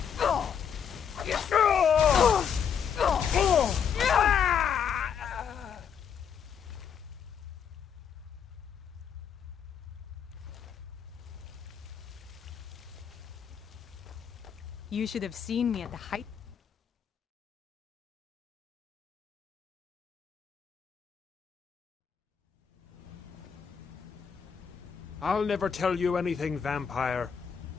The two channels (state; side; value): quieter; right; 7.6 dB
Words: You should have seen me at the height. I'll never tell you anything, vampire.